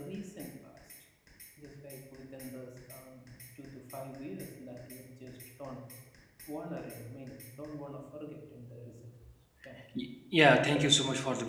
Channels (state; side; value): identical; both; correlation 1.00